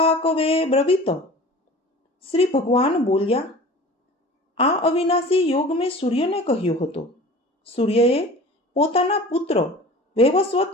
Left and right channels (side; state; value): both; normal; correlation 0.40